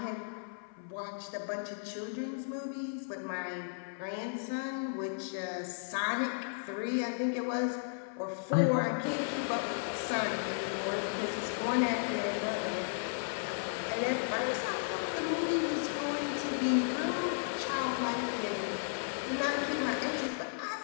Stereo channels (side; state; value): right; silent; 55 dB below the other